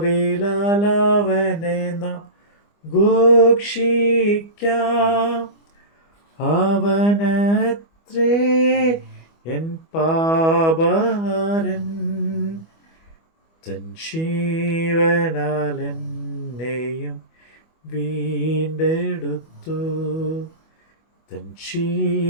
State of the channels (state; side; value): late; right; 25 ms